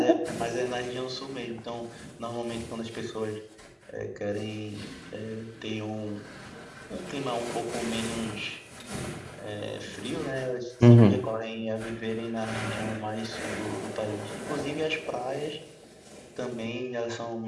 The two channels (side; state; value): both; identical; correlation 1.00